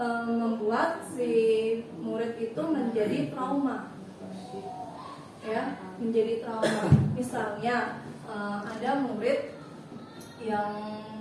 membuat si murid itu menjadi trauma. Ya, menjadi trauma. Misalnya ada murid yang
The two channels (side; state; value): both; identical; correlation 1.00